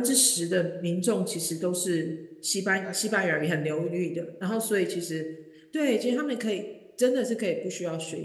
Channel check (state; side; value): identical; both; correlation 1.00